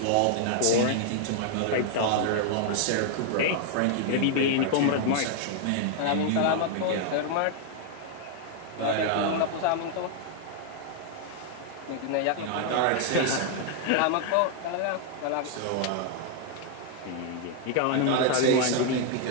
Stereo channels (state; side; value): different; both; correlation 0.00